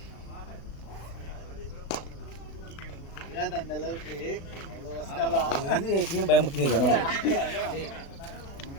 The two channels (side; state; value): right; late; 36 ms